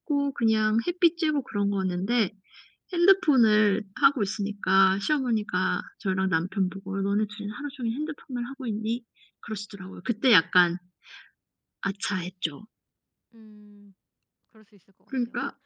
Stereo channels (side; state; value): both; identical; correlation 1.00